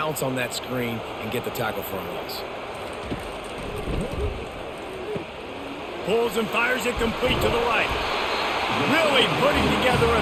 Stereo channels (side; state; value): both; identical; correlation 1.00